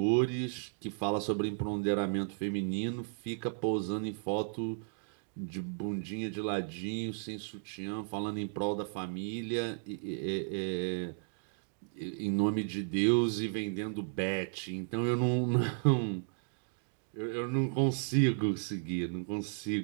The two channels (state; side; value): silent; left; digital silence